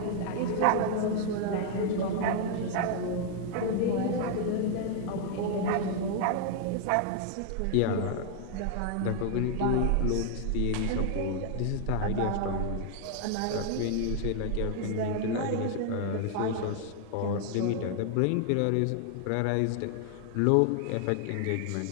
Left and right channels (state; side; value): different; both; correlation 0.00